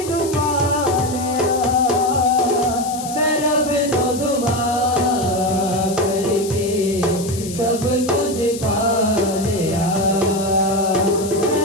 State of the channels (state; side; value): noise; left; hiss, 12 dB below the sound